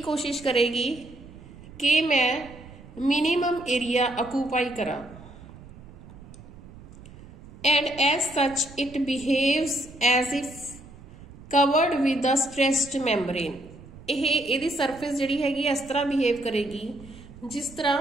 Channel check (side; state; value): right; noise; rumble, 18 dB below the sound